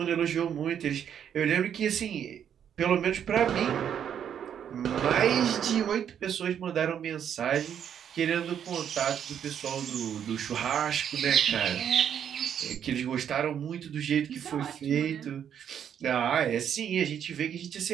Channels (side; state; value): left; quieter; 8.9 dB